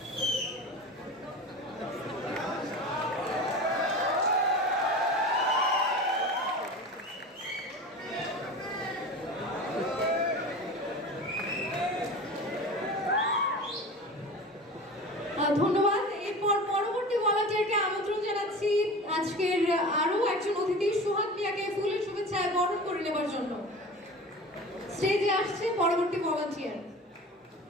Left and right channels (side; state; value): both; normal; correlation 0.34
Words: ধন্যবাদ। এরপর পরবর্তী ভলান্টিয়ারকে আমন্ত্রণ জানাচ্ছি আজকের আরো একজন অতিথি সুহাগ মিয়াকে ফুলের শুভেচ্ছায় বরণ করে নেবার জন্য। স্টেজে আসছে পরবর্তী ভলান্টিয়ার।